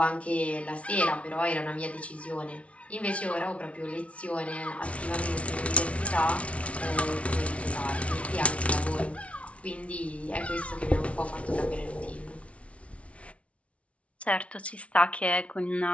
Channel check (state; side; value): late; right; 0.063 ms